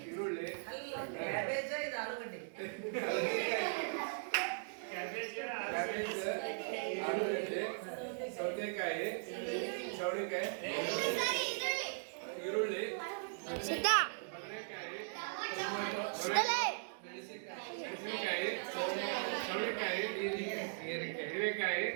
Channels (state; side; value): silent; left; digital silence